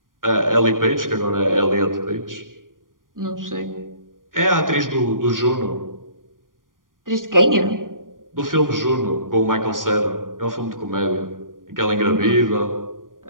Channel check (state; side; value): late; left; 0.90 ms